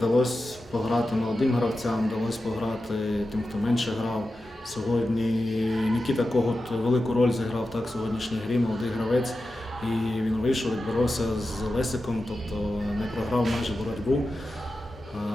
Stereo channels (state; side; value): normal; both; correlation 0.92